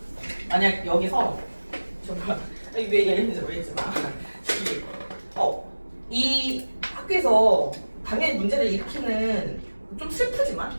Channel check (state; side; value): inverted; both; correlation -1.00